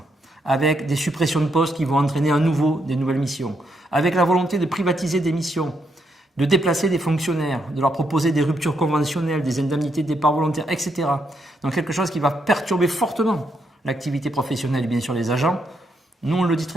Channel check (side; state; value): both; normal; correlation 0.78